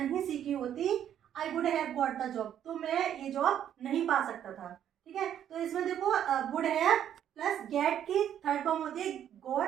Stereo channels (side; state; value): left; quieter; 10.1 dB